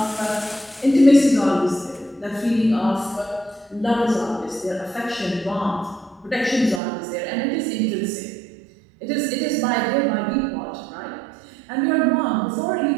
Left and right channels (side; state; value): left; drops out; at 6.8 s